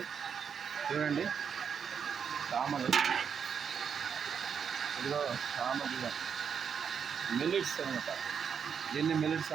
చూడండి. సామలు ఇదిగో సామ బియ్యం మిల్లెట్స్ అనమాట. దీన్ని మిల్లెట్స్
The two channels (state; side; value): quieter; left; 7.1 dB